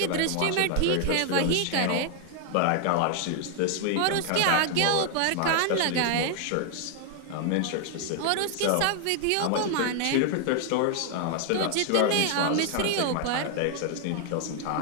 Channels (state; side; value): different; both; correlation 0.00